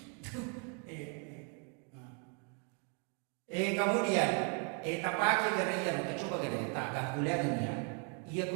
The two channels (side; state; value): left; quieter; 39.0 dB